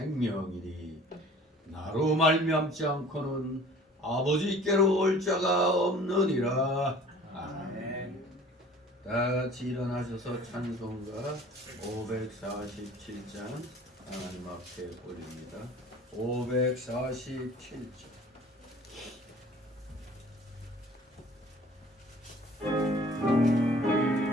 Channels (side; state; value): both; normal; correlation 0.48